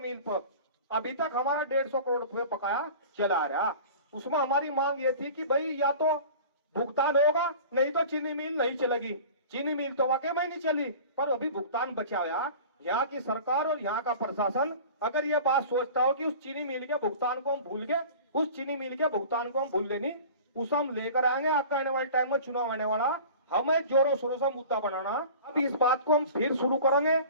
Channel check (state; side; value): inverted; both; correlation -0.40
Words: पर अभी तक हमारा 150 करोड़ रुपए बकाया चला आ रहा, उसमें हमारी मांग ये थी कि भाई या तो भुगतान होगा, नहीं तो चीनी मिल नहीं चलेगी। चीनी मिल तो वाकई में नहीं चली, पर अभी भुगतान बचा गया। यहाँ की सरकार और यहाँ का प्रशासन अगर ये बात सोचता हो कि उस चीनी मिल के भुगतान को हम भूल गए, उस चीनी मिल के भुगतान को हम भूल लेनी, उसे हम लेकर आएंगे। आगे आने वाले टाइम में चुनाव आने वाला, हमें जोरों शोरों से मुद्दा बनाना। अब इस बात को हम फिर शुरू करेंगे